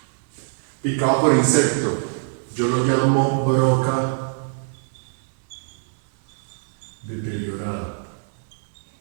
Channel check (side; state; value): left; silent; digital silence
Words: Picado por insecto. Yo lo llamo broca deteriorada.